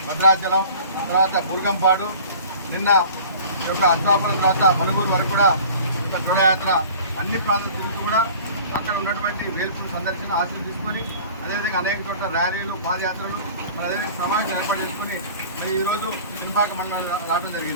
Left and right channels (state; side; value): inverted; both; correlation -0.44